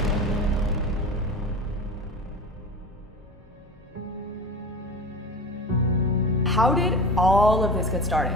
How did all of this get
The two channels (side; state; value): both; normal; correlation 0.31